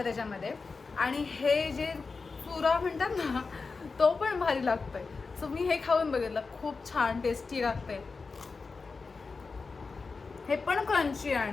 त्याच्यामध्ये. आणि हे जे पुरा म्हणतात ना तो पण भारी लागतोय. सो मी हे खाऊन बघितलं, खूप छान टेस्टी लागतंय. हे पण क्रंची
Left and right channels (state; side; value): quieter; right; 4.4 dB